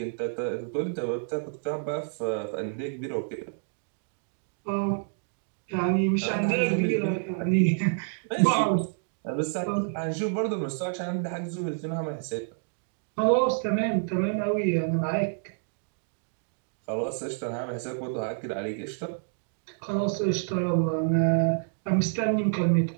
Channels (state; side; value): silent; left; digital silence